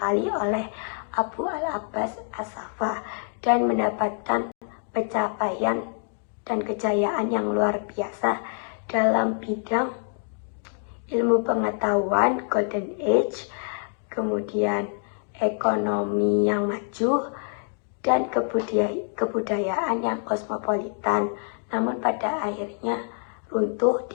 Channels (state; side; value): silent; right; 61 dB below the other